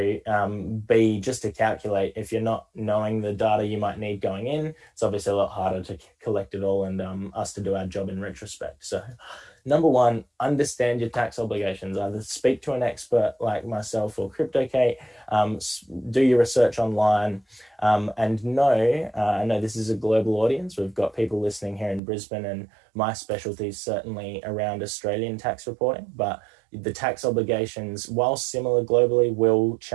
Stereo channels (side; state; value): left; drops out; at 22.0 s